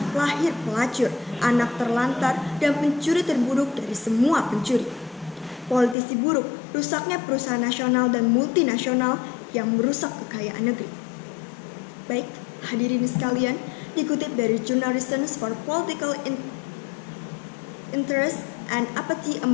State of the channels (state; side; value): drops out; right; at 6.0 s